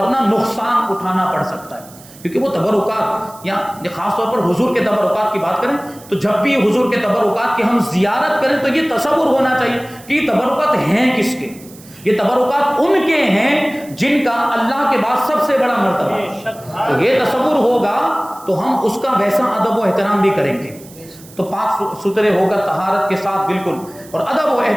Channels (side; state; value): right; noise; hiss, 21 dB below the sound